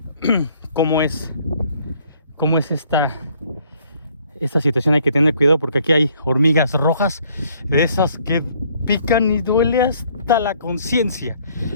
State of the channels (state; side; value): inverted; both; correlation -0.63